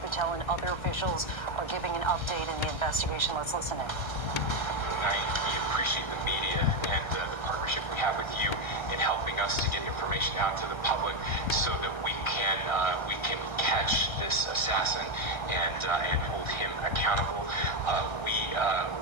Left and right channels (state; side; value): late; right; 1.3 ms